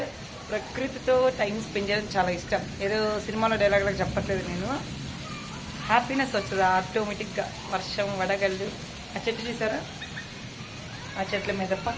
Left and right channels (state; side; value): identical; both; correlation 1.00